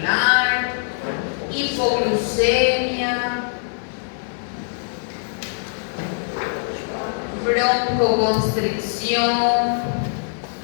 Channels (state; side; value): silent; right; digital silence